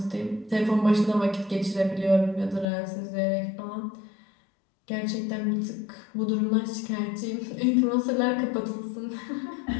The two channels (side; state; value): right; drops out; at 2.7 s